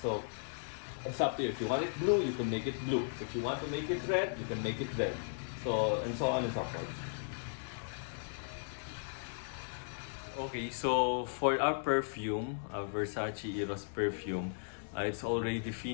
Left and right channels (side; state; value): right; silent; digital silence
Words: So it's up to you. If you want it blue, you can make it blue. If you want to make it red, you can make it red. So and so on and so forth. Okay, so for our perfume, Versace Eros perfume, it's already